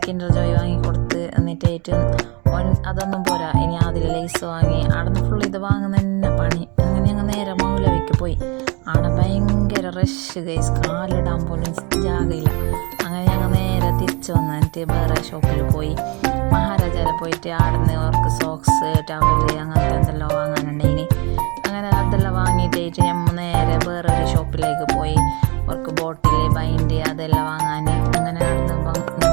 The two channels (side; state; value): left; quieter; 28.5 dB